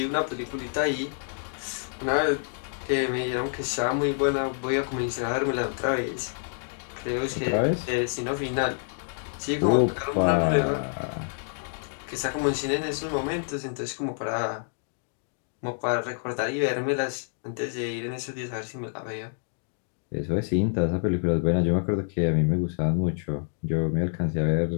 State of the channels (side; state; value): right; silent; digital silence